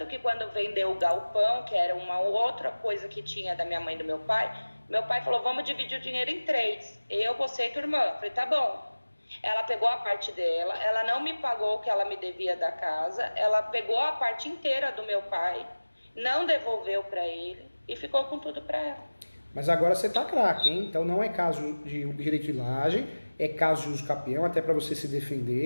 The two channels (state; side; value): inverted; both; correlation -1.00